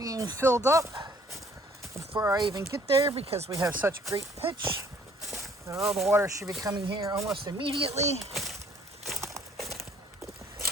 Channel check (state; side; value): normal; both; correlation 0.59